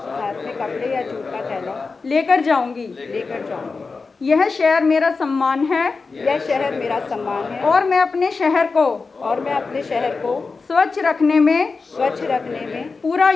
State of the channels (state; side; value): quieter; right; 4.3 dB